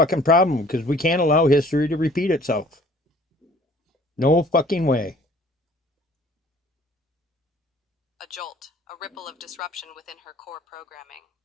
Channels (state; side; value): normal; both; correlation 0.53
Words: problem, because we can't allow history to repeat itself. No fucking way. A jolt, a ripple of disruption within her core programming.